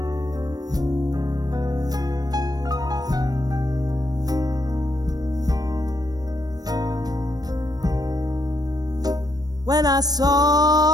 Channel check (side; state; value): left; late; 0.19 ms